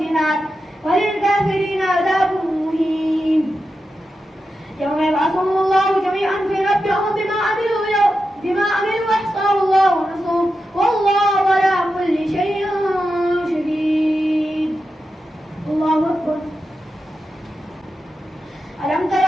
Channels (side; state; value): both; normal; correlation 0.89